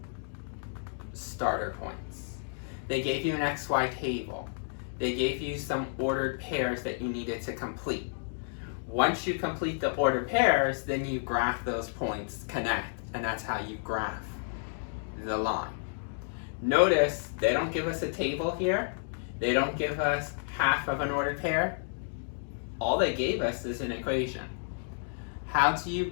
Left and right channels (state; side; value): silent; right; digital silence